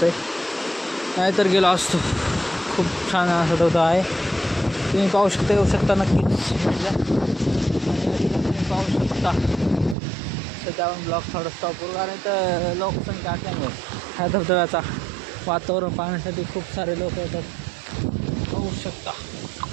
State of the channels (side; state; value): left; drops out; at 10.0 s